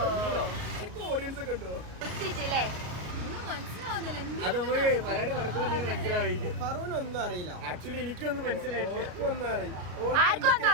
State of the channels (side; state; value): left; late; 33 ms